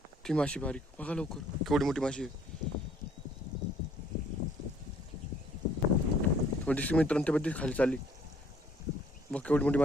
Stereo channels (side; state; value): both; normal; correlation 0.61